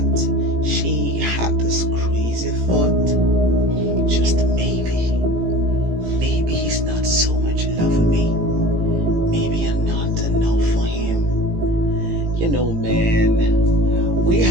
she had this crazy thought. Just maybe he's not so much in love with me. Maybe I'm not enough for him. Man, we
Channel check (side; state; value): left; late; 17 ms